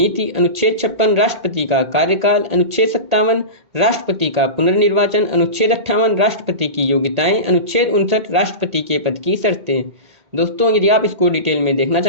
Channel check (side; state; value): left; late; 2.1 ms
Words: अनुच्छेद 56 राष्ट्रपति का कार्यकाल। अनुच्छेद 57 राष्ट्रपति का पुनर्निर्वाचन। अनुच्छेद 58 राष्ट्रपति की योग्यताएं। अनुच्छेद 59 राष्ट्रपति के पद की शर्तें। दोस्तों, यदि आप इसको डिटेल में देखना